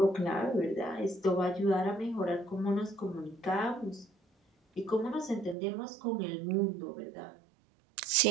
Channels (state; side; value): drops out; left; at 5.6 s